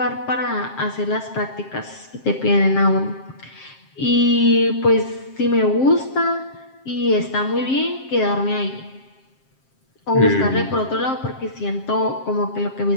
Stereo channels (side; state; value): right; late; 7.5 ms